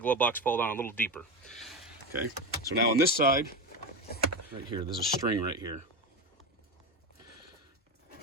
glove box fall down a little deeper. Okay, so now on this side, right here, there's a string right here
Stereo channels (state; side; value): normal; both; correlation 0.17